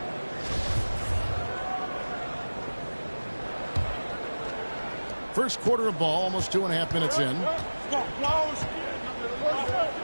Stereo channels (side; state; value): both; inverted; correlation -1.00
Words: First quarter of ball, almost 2.5 minutes in.